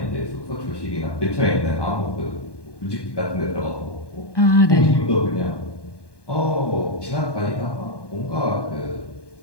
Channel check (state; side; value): late; right; 1.2 ms